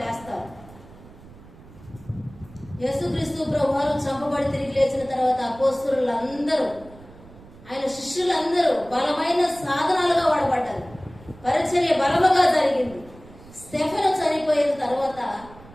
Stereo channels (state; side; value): noise; right; rumble, 21 dB below the sound